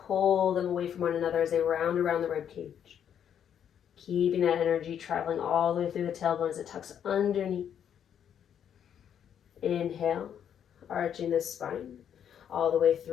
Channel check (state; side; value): quieter; right; 8.9 dB